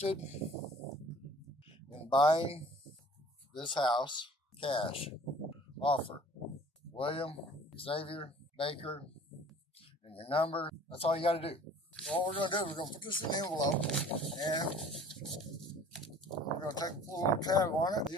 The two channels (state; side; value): normal; both; correlation 0.49